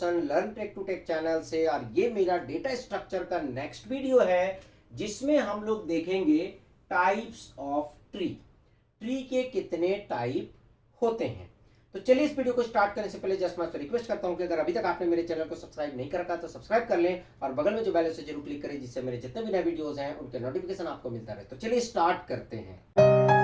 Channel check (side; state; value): both; identical; correlation 1.00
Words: learn tech to tech channel से। और ये मेरा डेटा स्ट्रक्चर का नेक्स्ट वीडियो है जिसमें हम लोग देखेंगे टाइप्स ऑफ ट्री। ट्री के कितने टाइप होते हैं। तो चलिए इस वीडियो को स्टार्ट करने से पहले जस्ट मैं आपसे रिक्वेस्ट करता हूं कि अगर अभी तक आपने मेरे चैनल को सब्सक्राइब नहीं कर रखा तो सब्सक्राइब कर लें और बगल में जो बेल है उसे जरूर क्लिक करें जिससे मेरे जितने भी नए वीडियोस हैं उनके नोटिफिकेशन आपको मिलता रहे। तो चलिए स्टार्ट करते हैं।